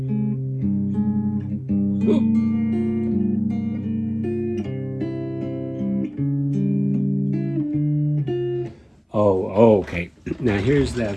Oh, okay. Now here's the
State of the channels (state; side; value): identical; both; correlation 1.00